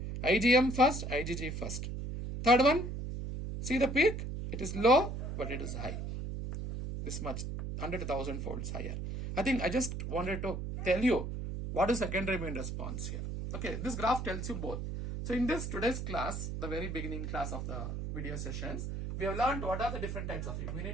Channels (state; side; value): noise; right; hum, 5 dB below the sound